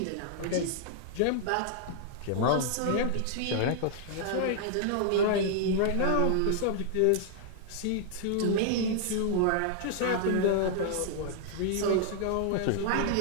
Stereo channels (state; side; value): different; both; correlation -0.01